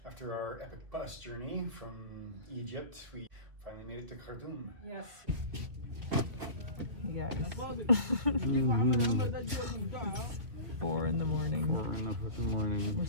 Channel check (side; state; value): left; late; 2.1 ms